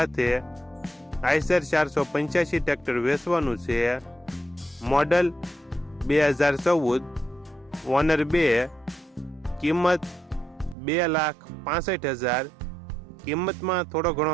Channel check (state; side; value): drops out; left; at 10.8 s